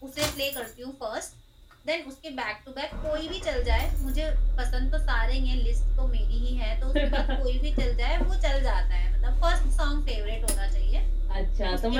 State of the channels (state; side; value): identical; both; correlation 1.00